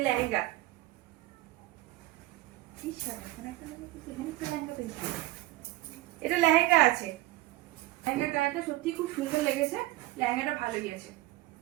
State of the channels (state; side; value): quieter; left; 17.3 dB